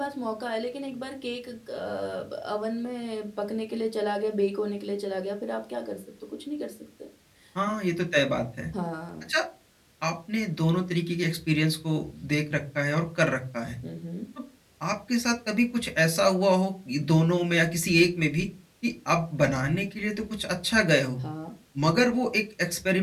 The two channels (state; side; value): identical; both; correlation 1.00